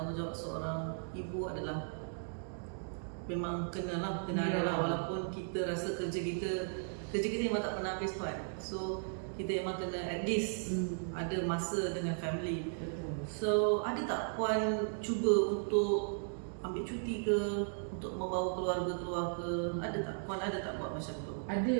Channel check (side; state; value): left; silent; digital silence